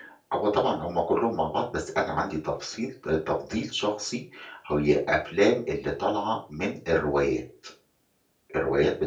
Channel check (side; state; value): both; identical; correlation 1.00